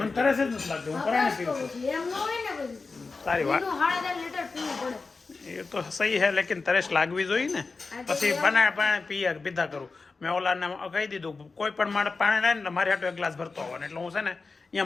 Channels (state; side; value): quieter; right; 4.1 dB